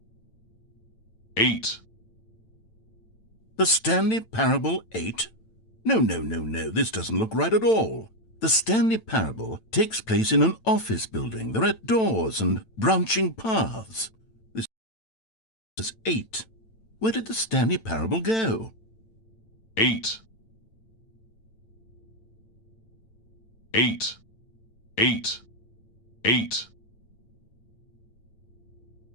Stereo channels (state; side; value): late; right; 9.0 ms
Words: Eight. The Stanley Parable 8? No, this doesn't look right at all. The Stanley Parable takes place in an office building. There are doors and branching paths. This is 8. Where did the Stanley Parable go? Eight. Eight. Eight. Eight.